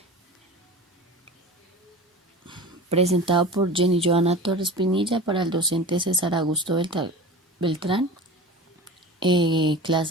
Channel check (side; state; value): both; normal; correlation 0.34